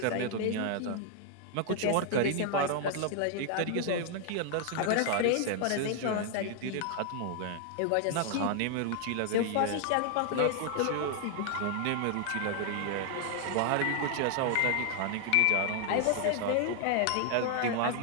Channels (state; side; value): different; both; correlation 0.00